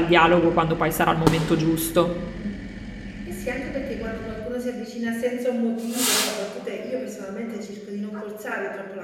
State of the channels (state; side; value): identical; both; correlation 1.00